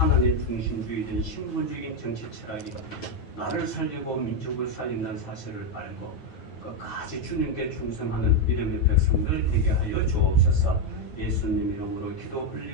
중심주의된 신본주의적인 정치 철학이 나를 살리고 민족을 살린다는 사실을 알고 끝까지 주님께 충성하는 믿음의 백성들 되게 하여 주옵소서. 예수님 이름으로 기도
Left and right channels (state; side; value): late; right; 9.2 ms